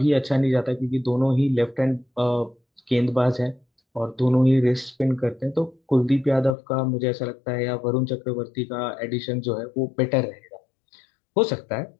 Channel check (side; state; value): right; drops out; at 6.5 s